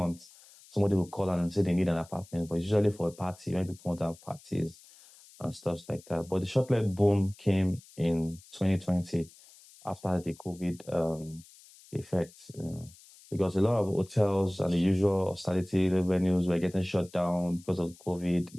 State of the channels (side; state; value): left; noise; hiss, 24 dB below the sound